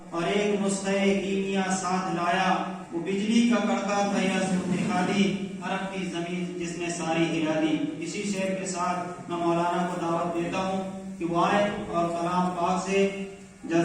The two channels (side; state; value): both; identical; correlation 1.00